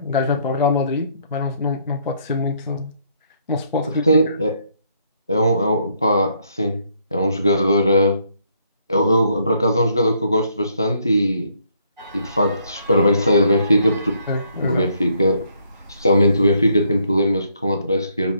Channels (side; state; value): both; inverted; correlation -0.69